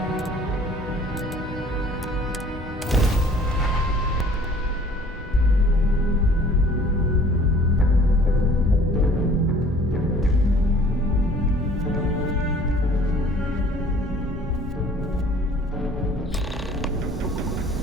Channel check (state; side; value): normal; both; correlation 0.52